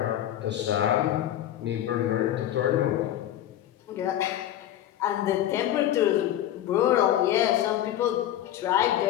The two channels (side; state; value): right; quieter; 12.1 dB